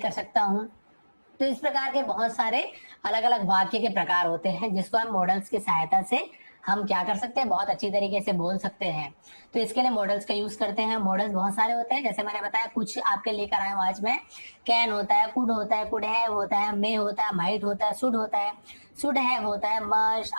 सकता हूँ। तो इस प्रकार के बहुत सारे अलग अलग वाक्य के प्रकार होते हैं, जिसको हम मॉडल्स की सहायता से हम क्या कर सकते हैं, बहुत अच्छी तरीके से बोल सकते हैं। तो इसके लिए मॉडल्स का यूज करते हैं। मॉडल्स बहुत सारे होते हैं, जैसे मैंने बताया कुछ आपके लेकर आया हूं आज मैं। कैन होता है, कुड होता है, कुड हैव होता है, मे होता है, माइट होता है, शुड होता है, शुड हैव होता है, मस्ट,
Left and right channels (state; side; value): inverted; both; correlation -1.00